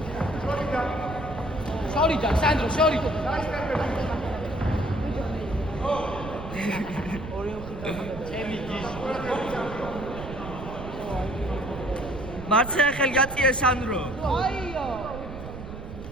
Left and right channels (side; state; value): right; noise; rumble, 11 dB below the sound